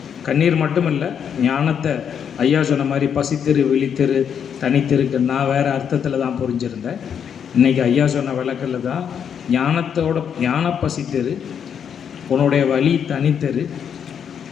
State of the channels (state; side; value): quieter; right; 7.9 dB